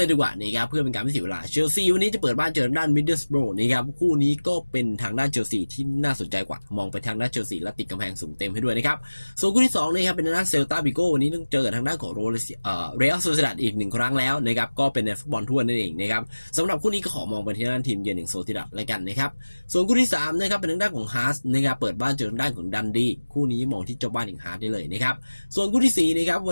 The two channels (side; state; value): both; inverted; correlation -1.00